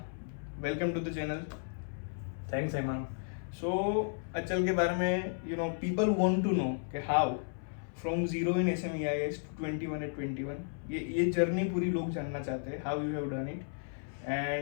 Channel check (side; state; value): right; silent; 55 dB below the other